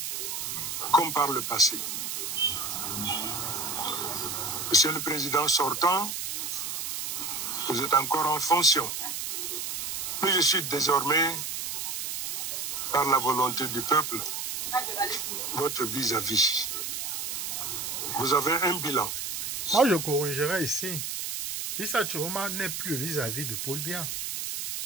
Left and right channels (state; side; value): noise; right; hiss, 4 dB below the sound